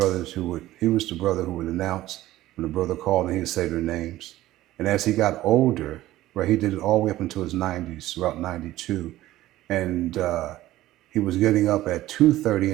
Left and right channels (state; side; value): quieter; left; 15.5 dB